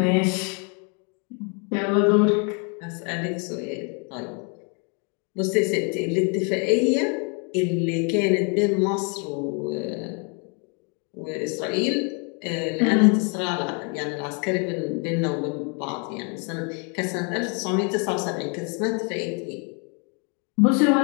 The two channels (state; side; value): quieter; right; 36.2 dB